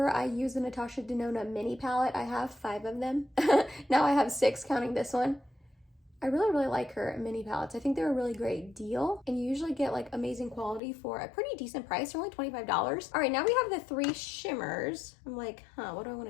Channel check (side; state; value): right; drops out; at 10.8 s